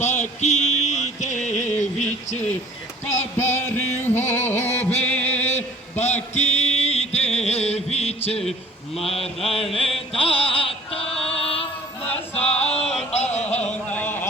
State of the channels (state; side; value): normal; both; correlation 0.50